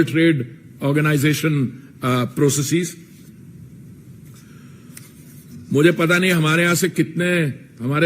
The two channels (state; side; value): identical; both; correlation 1.00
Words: Trade Organization processes. मुझे पता नहीं हमारे यहाँ से कितने